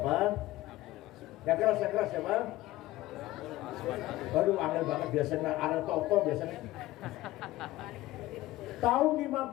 Yang keras siapa? Baru angel banget biasanya, ada toko biasanya. Tahun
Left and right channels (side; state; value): right; quieter; 16.8 dB